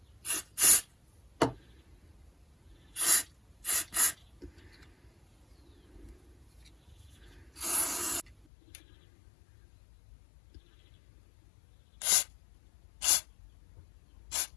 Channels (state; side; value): drops out; right; at 8.5 s